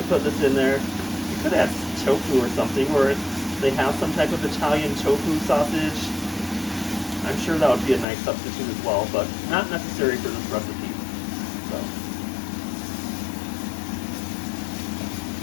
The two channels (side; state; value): right; drops out; at 8.1 s